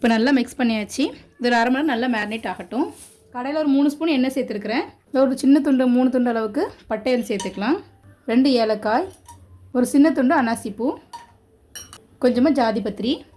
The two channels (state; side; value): identical; both; correlation 1.00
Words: நல்லா மிக்ஸ் பண்ணியாச்சு. இது ஒரு 1/2 மணி நேரம் நல்லா மேரினேட் ஆகட்டும். கடையில் ஒரு 3 ஸ்பூன் எண்ணெய் சேர்த்துருக்குறேன். ஒரு சின்ன துண்டு 3 துண்டு அளவுக்கு பட்டையில் சேர்த்துக்கலாம். 2 ஏலக்காய், ஒரு சின்ன துண்டு அன்னாசிப்பூ, கொஞ்சமாக ஜாதிபத்திரி,